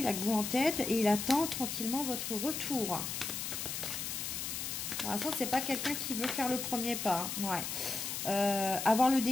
a que vous en tête et il attend tranquillement votre retour. Pour l'instant, c'est pas quelqu'un qui veut faire le premier pas. Hein. Ouais. Avoir le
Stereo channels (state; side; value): noise; left; hiss, 4 dB below the sound